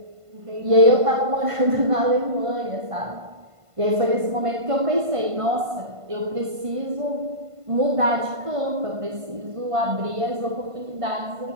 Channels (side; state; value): left; late; 1.5 ms